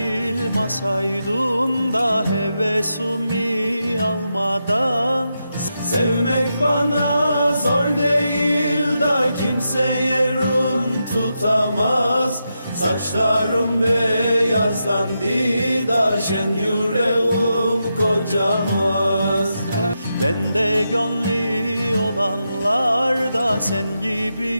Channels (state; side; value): inverted; both; correlation -0.86